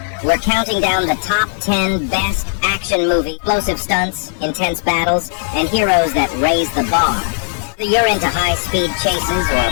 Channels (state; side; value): silent; right; digital silence